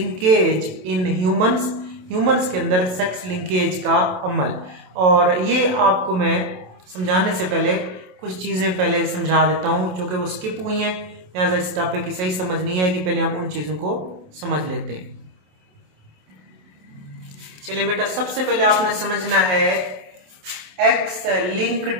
in humans. Humans के अंदर सेक्स लिंकेज का अमल। और ये आपको मैं समझाने से पहले कुछ चीज़ें पहले समझा देता हूँ जो कि वो स्किप हुई हैं, लिहाजा इस टॉपिक की सही समझ नहीं आएगी। पहले हम उन चीज़ों को समझ लेते हैं। चलिए बेटा, सबसे पहले आपने समझना है एक्स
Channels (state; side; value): late; left; 27 ms